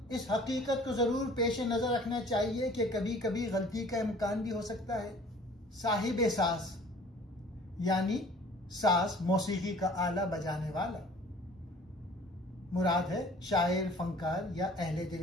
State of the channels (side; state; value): both; normal; correlation 0.50